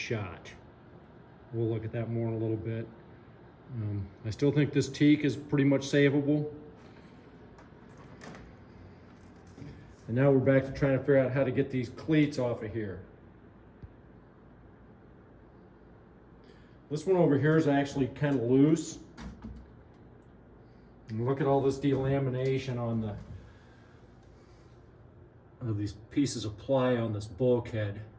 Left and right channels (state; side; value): identical; both; correlation 1.00